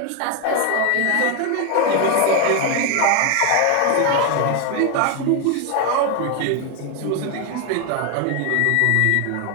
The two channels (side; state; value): both; different; correlation 0.01